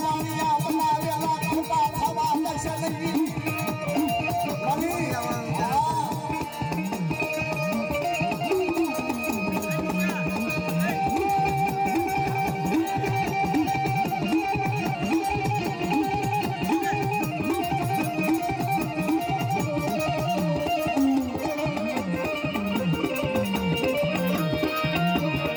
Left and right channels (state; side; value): identical; both; correlation 1.00